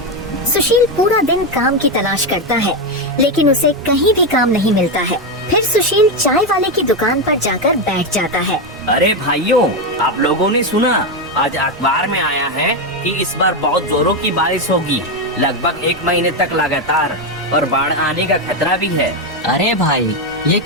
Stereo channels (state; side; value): noise; right; rumble, 21 dB below the sound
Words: सुशील पूरा दिन काम की तलाश करता है, लेकिन उसे कहीं भी काम नहीं मिलता है। फिर सुशील चाय वाले की दुकान पर जाकर बैठ जाता है। अरे भाइयों, आप लोगों ने सुना? आज अखबार में आया है कि इस बार बहुत जोरों की बारिश होगी, लगभग 1 महीने तक लगातार, और बाढ़ आने का खतरा भी है। अरे भाई, ये